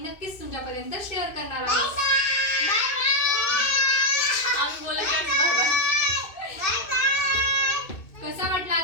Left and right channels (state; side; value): late; right; 2.6 ms